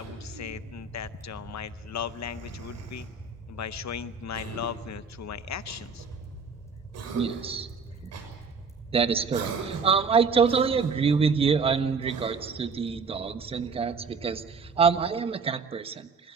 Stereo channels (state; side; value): quieter; left; 4.7 dB